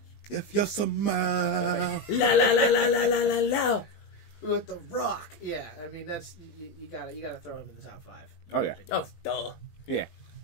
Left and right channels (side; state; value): right; late; 19 ms